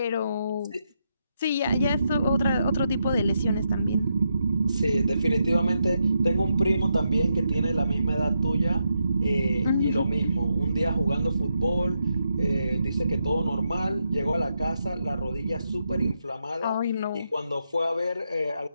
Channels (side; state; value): both; inverted; correlation -0.82